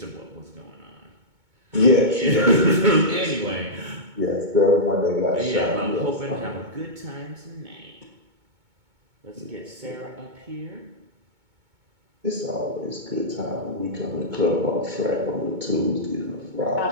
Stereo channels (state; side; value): late; left; 2.2 ms